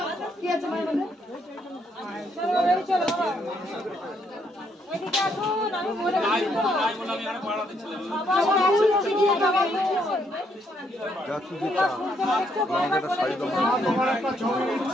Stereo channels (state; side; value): normal; both; correlation 0.73